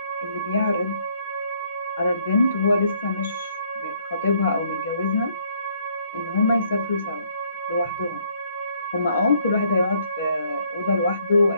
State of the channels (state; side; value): inverted; both; correlation -0.66